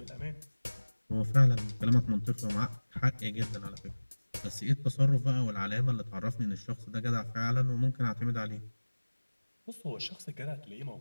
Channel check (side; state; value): both; inverted; correlation -1.00